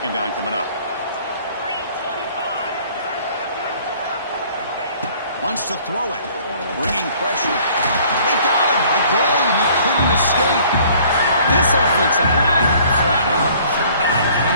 down coming up. Wants to throw it. Bringing pressure. We got him. Again, he couldn't escape. This offensive line, flat out, cannot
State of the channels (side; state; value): both; inverted; correlation -0.56